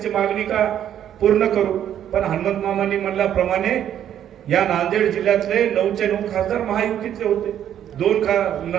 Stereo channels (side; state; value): left; quieter; 10.3 dB